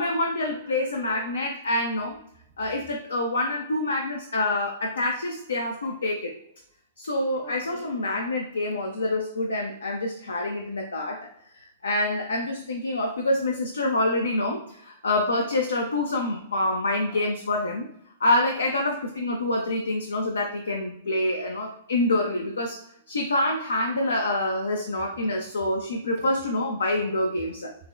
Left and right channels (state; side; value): inverted; both; correlation -0.59